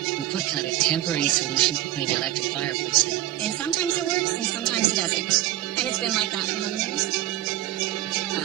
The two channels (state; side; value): quieter; left; 15.0 dB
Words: We put kind of a temporary solution between the electric fireplace in. And sometimes it works, and sometimes it doesn't. And it's been like that for how many years?